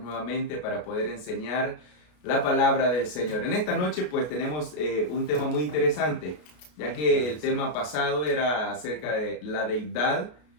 nuevamente para poder enseñar la palabra del Señor. En esta noche pues tenemos un tema muy interesante, ya que el tema pasado era acerca de la deidad,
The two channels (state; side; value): late; right; 33 ms